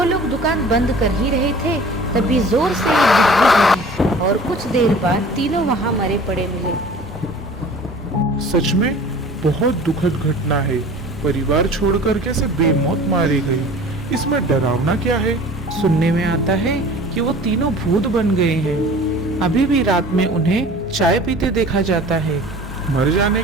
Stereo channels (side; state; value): both; normal; correlation 0.44